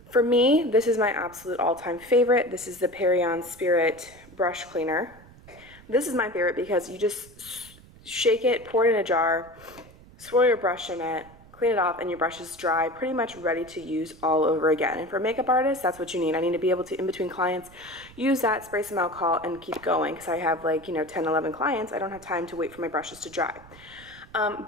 for me, this is my absolute all-time favorite. This is the Perion Spirit brush cleaner. This is my favorite because you just shake it, pour it in a jar, swirl your brush in it, clean it off, and your brush is dry, pretty much ready to use all over again. And for a makeup artist, that's what you need. I need to be able to, in between clients, use that, spray some alcohol, and keep going because I have 10, 11 clients. I don't have time to wait for my brushes to dry.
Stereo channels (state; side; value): noise; right; rumble, 22 dB below the sound